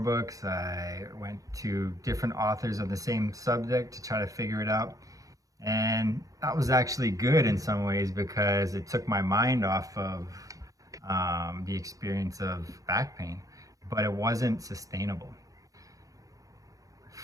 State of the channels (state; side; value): late; left; 0.17 ms